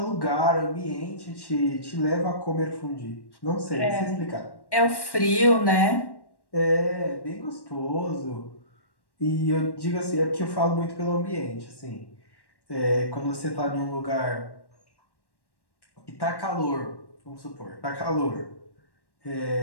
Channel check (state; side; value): late; right; 1.1 ms